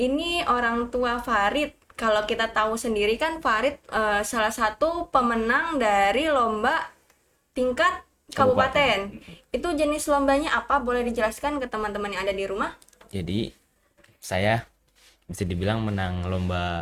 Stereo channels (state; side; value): identical; both; correlation 1.00